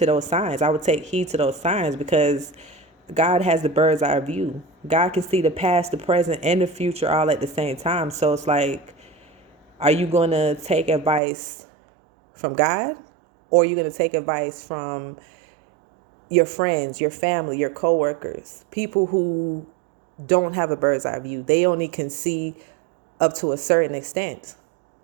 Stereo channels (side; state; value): left; drops out; at 11.2 s